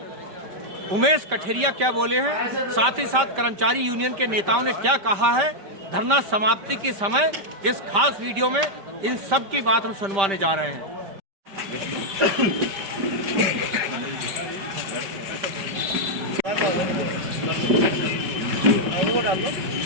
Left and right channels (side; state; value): left; late; 5.1 ms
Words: उमेश कठेरिया क्या बोले हैं, साथ ही साथ कर्मचारी यूनियन के नेताओं ने क्या कहा है धरना समाप्ति के समय, इस खास वीडियो में इन सब की बात हम सुनवाने जा रहे हैं।